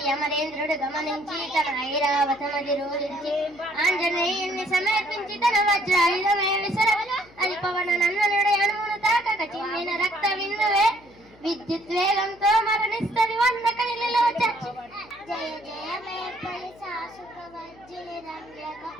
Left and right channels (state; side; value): noise; left; hum, 25 dB below the sound